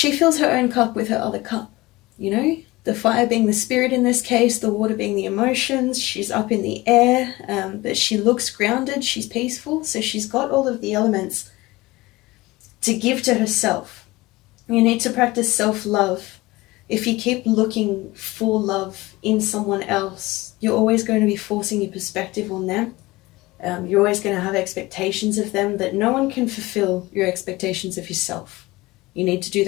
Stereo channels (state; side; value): quieter; right; 20.5 dB